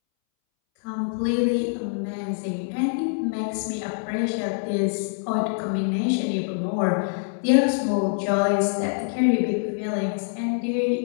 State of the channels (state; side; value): silent; right; 62 dB below the other